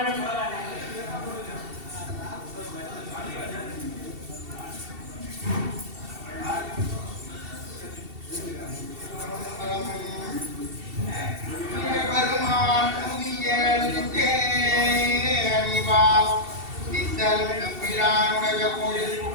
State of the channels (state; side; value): late; left; 2.7 ms